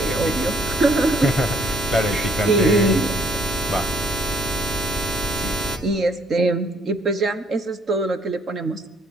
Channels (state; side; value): normal; both; correlation 0.66